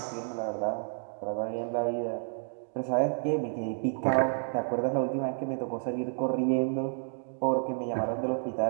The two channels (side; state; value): left; silent; digital silence